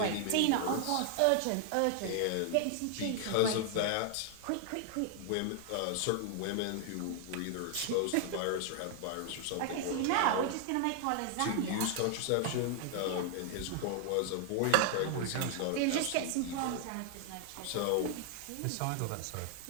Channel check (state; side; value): different; both; correlation 0.00